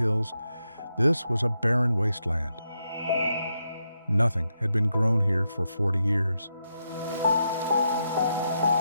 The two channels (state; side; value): inverted; both; correlation -0.83